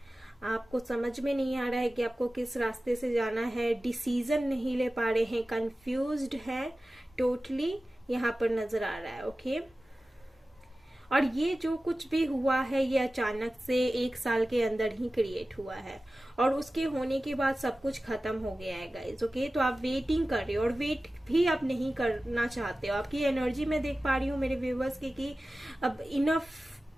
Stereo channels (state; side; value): normal; both; correlation 0.96